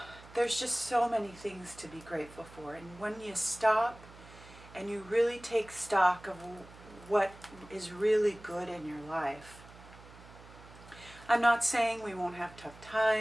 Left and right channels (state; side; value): noise; right; hum, 20 dB below the sound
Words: there's just so many things to be grateful for. And when you stop and you really take stock of what is really good in your life, I'm not saying we won't have tough